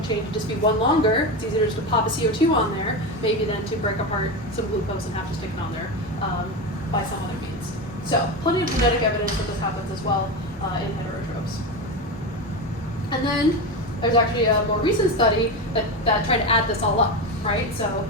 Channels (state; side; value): normal; both; correlation 0.19